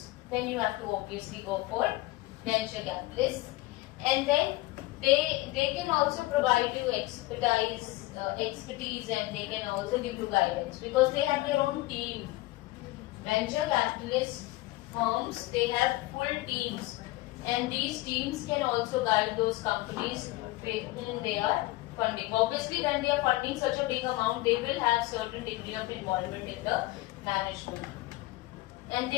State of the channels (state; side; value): quieter; right; 19.3 dB